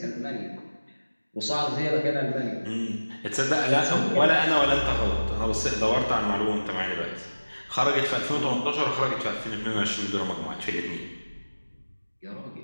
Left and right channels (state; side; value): inverted; both; correlation -1.00